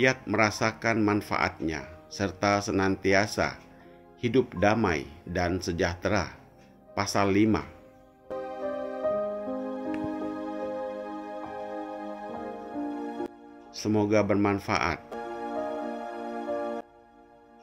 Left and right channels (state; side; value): identical; both; correlation 1.00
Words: merasakan manfaatnya, serta senantiasa hidup damai dan sejahtera. Pasal 5. Semoga bermanfaat.